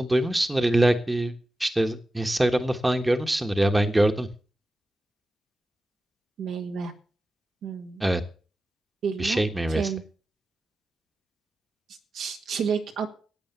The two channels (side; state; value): both; normal; correlation 0.93